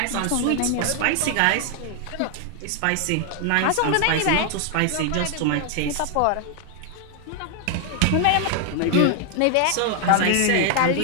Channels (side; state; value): both; different; correlation 0.00